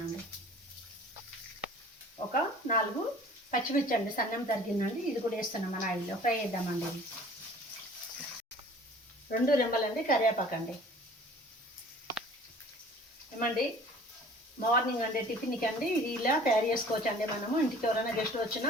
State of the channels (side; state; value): both; normal; correlation 0.48